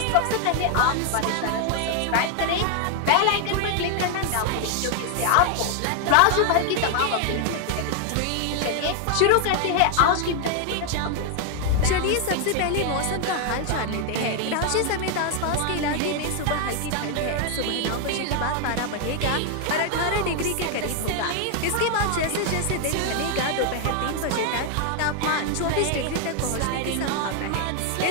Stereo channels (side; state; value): both; different; correlation 0.00